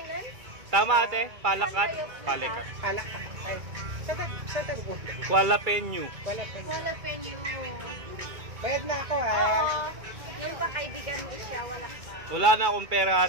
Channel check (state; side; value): late; left; 2.3 ms